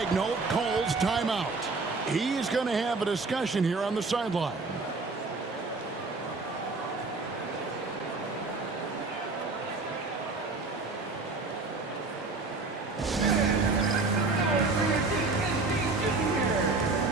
calls timeout. He's going to have a discussion here on the sideline.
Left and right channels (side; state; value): left; quieter; 3.7 dB